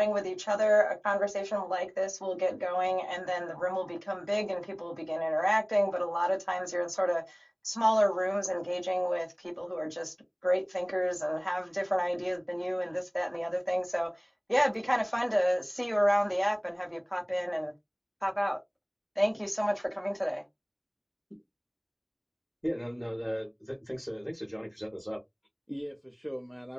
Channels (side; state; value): both; identical; correlation 1.00